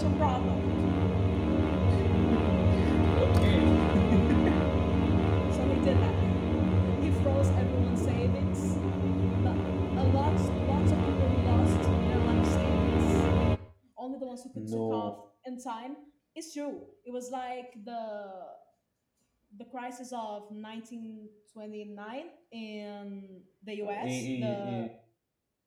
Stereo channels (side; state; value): both; identical; correlation 1.00